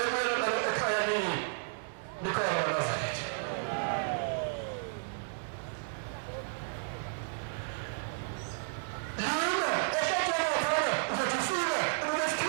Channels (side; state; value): left; silent; 56 dB below the other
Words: nalo ekhaya kini nikhona baNazaretha lima ehlathela phana uzothi ufika